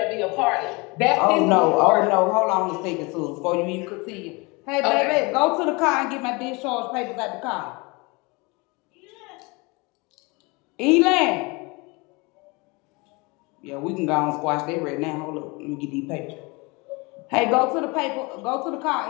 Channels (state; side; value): quieter; right; 27.0 dB